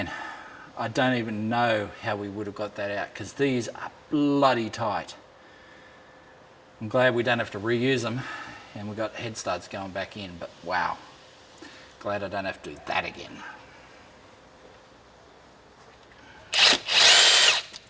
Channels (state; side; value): identical; both; correlation 1.00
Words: I don't even know how we would have got that out, because these are bloody tight. I'm glad we don't have to reuse them, and we've got head studs going back in, but wow, glad I don't have to do that again.